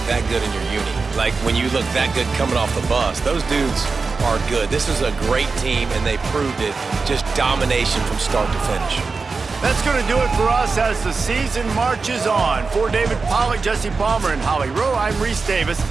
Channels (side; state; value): left; quieter; 4.4 dB